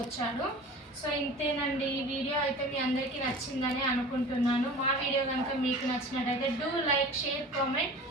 సో ఇంతేనండి. ఈ వీడియో అయితే మీ అందరికీ నచ్చిందని అనుకుంటున్నాను. మా వీడియో కనుక మీకు నచ్చినట్టయితే డూ లైక్, షేర్, కామెంట్.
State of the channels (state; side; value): normal; both; correlation 0.39